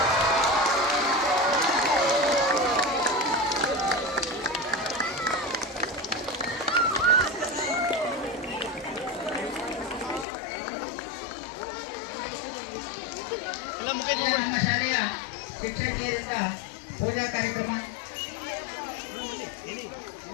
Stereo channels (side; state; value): right; drops out; at 10.2 s